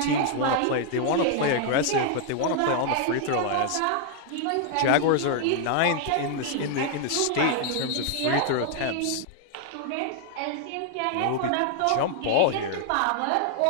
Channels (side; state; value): both; different; correlation 0.00